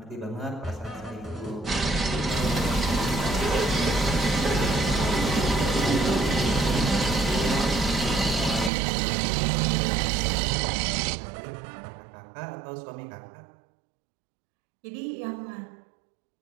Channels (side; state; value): left; drops out; at 8.7 s